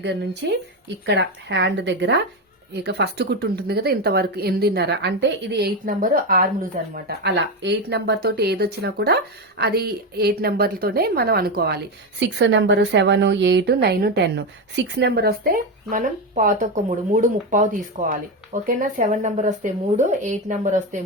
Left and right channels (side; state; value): both; normal; correlation 0.13